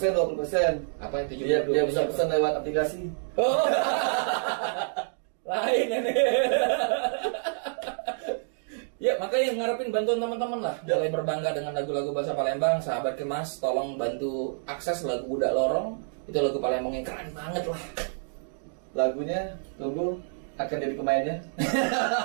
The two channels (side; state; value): left; silent; digital silence